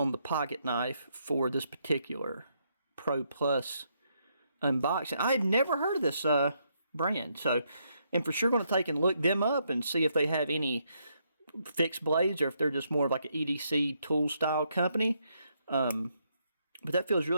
the pocket knife for this particular Pro Plus unboxing. I had never heard of this brand, so I'm for sure going to take and look them up and see if they have any fixed blades or if they're just more of like an EDC tool style company. But that feels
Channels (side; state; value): both; inverted; correlation -0.76